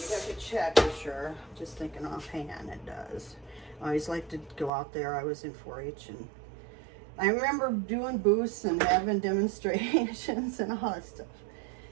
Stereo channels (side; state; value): left; drops out; at 4.7 s